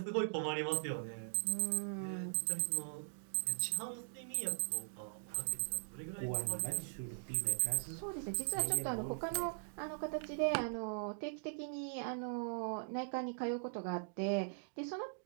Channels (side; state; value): left; silent; digital silence